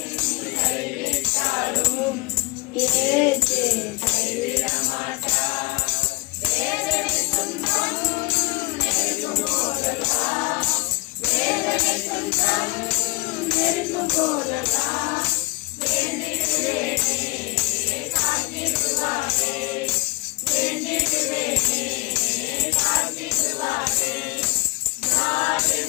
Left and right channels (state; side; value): quieter; right; 24.5 dB